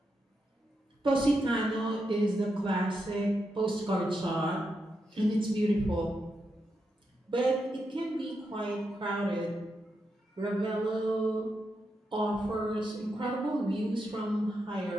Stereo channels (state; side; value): normal; both; correlation 0.84